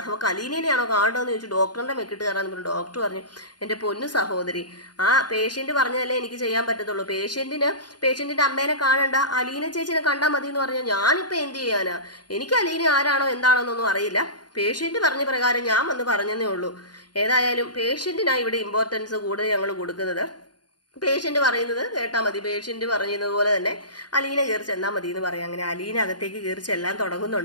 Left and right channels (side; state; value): right; late; 0.70 ms